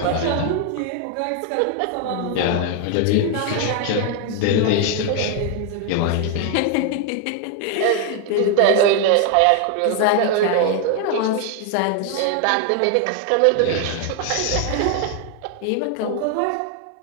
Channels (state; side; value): different; both; correlation 0.01